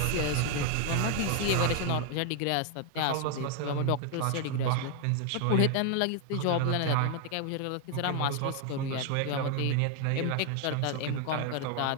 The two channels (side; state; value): both; different; correlation 0.00